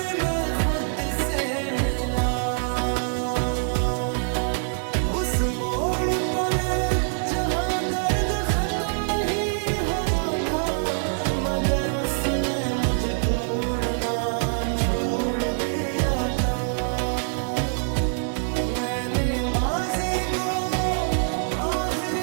मैं खुद से मिला, उस मोड़ पर जहां दर्द खत्म नहीं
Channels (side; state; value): left; silent; 62 dB below the other